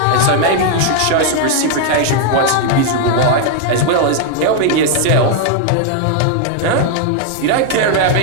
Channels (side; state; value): both; different; correlation 0.00